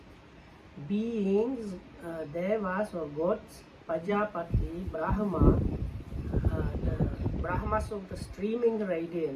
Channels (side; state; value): both; identical; correlation 1.00